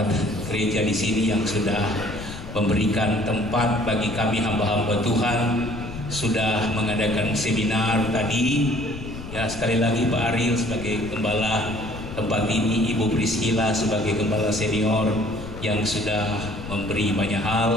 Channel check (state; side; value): noise; left; rumble, 11 dB below the sound